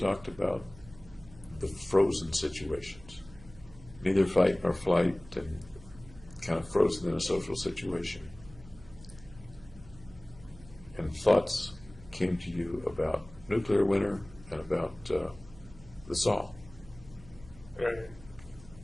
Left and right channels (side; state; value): right; noise; hum, 20 dB below the sound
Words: about the frozen situations, neither fight nor flight, and kind of frozen in a social situation. And thoughts came to you about nuclear winter and about the saw. Right.